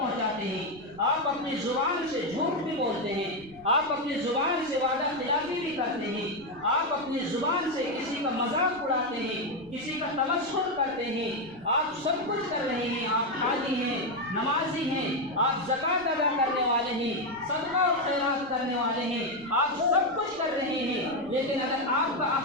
ہیں، آپ اپنی زبان سے جھوٹ بھی بولتے ہیں، آپ اپنی زبان سے وعدہ خلافی بھی کرتے ہیں، آپ اپنی زبان سے کسی کا مذاق اڑاتے ہیں، کسی کا تمسخر کرتے ہیں، آپ سب کچھ کر رہے ہیں، آپ حاجی ہیں، نمازی ہیں، آپ زکوٰۃ ادا کرنے والے ہیں، صدقہ اور خیرات کرنے والے ہیں، آپ سب کچھ کر رہے ہیں، لیکن اگر آپ کا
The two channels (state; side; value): noise; right; rumble, 24 dB below the sound